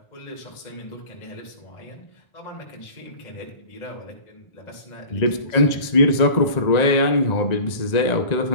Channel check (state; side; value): late; right; 1.9 ms